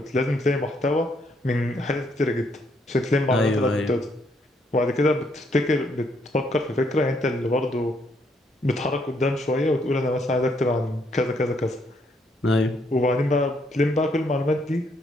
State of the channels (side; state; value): both; normal; correlation 0.72